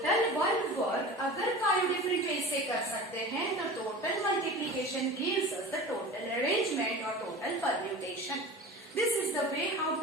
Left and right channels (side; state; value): both; normal; correlation 0.35